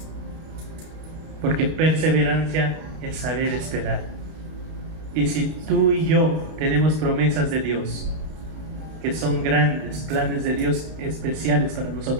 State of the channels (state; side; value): late; left; 32 ms